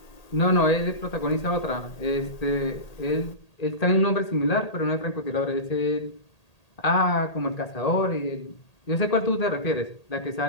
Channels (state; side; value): late; right; 1.8 ms